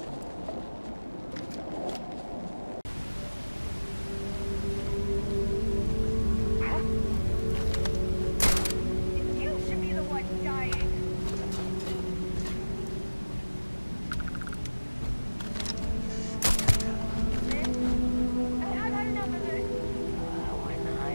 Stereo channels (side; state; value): both; inverted; correlation -1.00